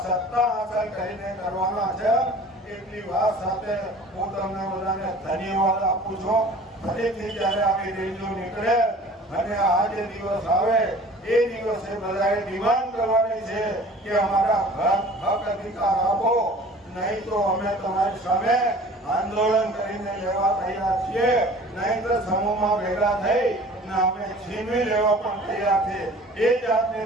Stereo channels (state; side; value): normal; both; correlation 0.46